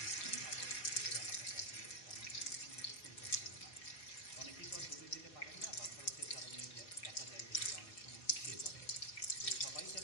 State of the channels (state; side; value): late; right; 4.7 ms